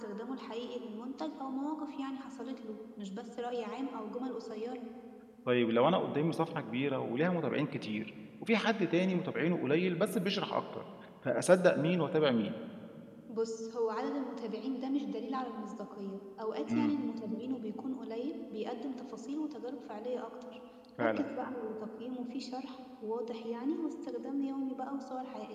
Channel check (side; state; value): both; identical; correlation 1.00